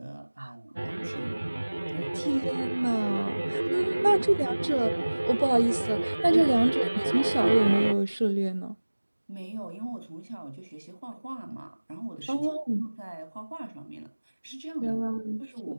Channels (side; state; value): both; inverted; correlation -1.00